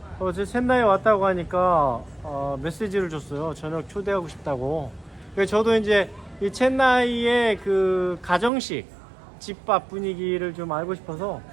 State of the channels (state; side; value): drops out; left; at 8.5 s